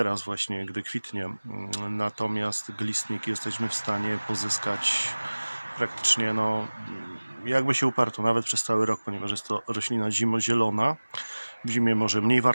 właśnie, gdy kwitnie. Natomiast glistnik jesteśmy w stanie pozyskać praktycznie, no, jakby się uparto, nawet przez cały rok, ponieważ jest to roślina zimozielona. W zimie może mniej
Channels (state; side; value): inverted; both; correlation -1.00